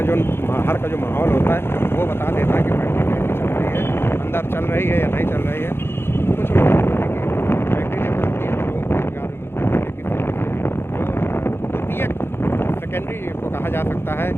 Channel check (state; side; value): late; right; 0.11 ms